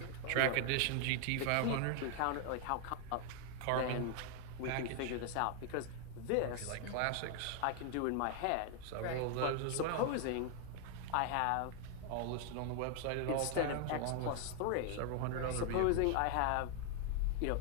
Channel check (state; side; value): different; both; correlation 0.00